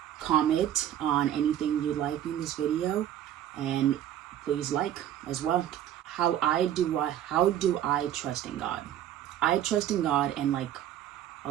comment on anything you like in this video, and please like as well. How do I trust in God? I trust in God in like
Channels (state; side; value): quieter; left; 11.3 dB